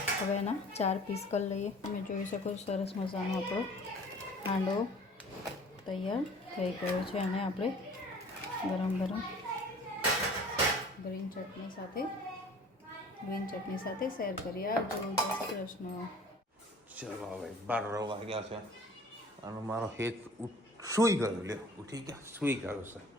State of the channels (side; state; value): both; normal; correlation 0.48